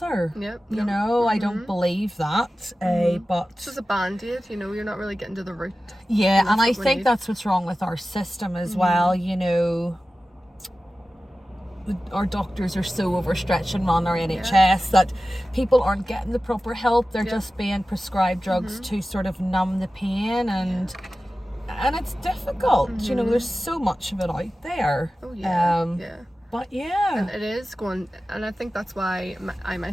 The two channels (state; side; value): normal; both; correlation 0.95